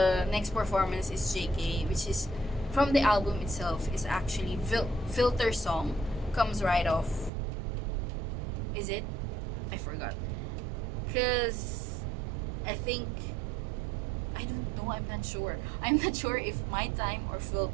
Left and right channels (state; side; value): drops out; left; at 7.3 s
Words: next performance is JK, which is from the album itself, is actually Filter song, comes right off. Is it? I forgot, because I think, I don't know, I'm not sure if My Time or